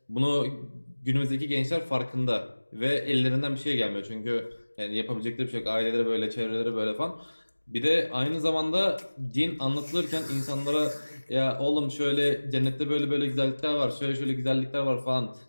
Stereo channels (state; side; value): inverted; both; correlation -1.00